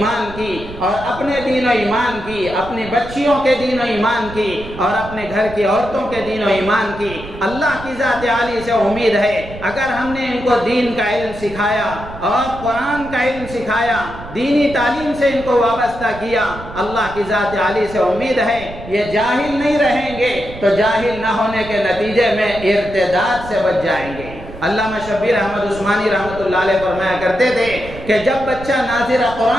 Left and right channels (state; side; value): noise; right; rumble, 13 dB below the sound